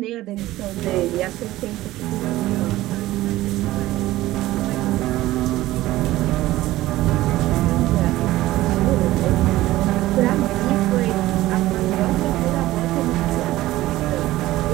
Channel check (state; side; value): quieter; left; 16.4 dB